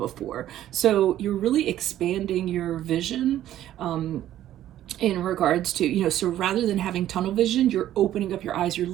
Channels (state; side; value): quieter; left; 12.5 dB